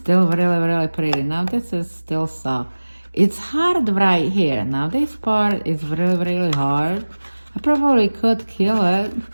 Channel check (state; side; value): inverted; both; correlation -1.00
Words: really, really pretty. Now this is still soft. It's hard right here. Now this part is really, really hard. I probably could kill it